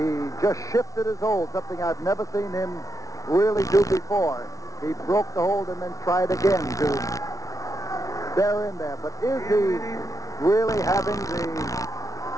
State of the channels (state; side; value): late; right; 0.17 ms